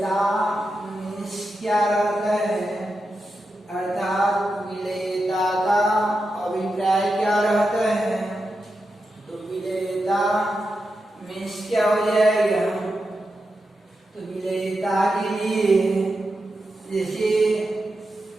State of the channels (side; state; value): both; normal; correlation 0.88